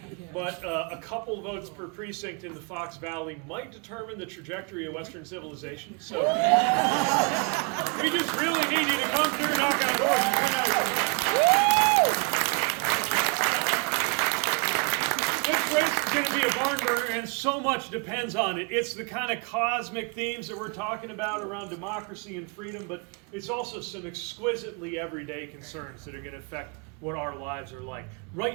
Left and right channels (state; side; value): quieter; left; 33.6 dB